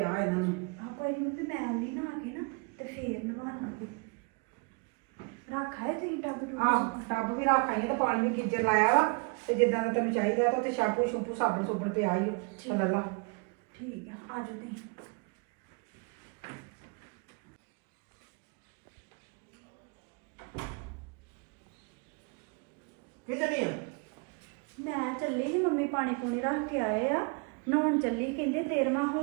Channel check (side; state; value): left; quieter; 33.7 dB